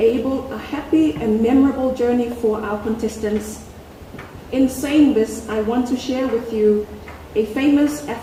a happy and memorable journey for our contestants. In saying this, I want to share with you a famous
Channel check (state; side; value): identical; both; correlation 1.00